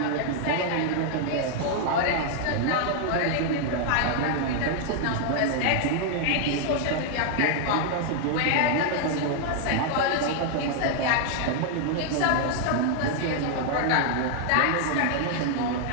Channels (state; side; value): different; both; correlation 0.00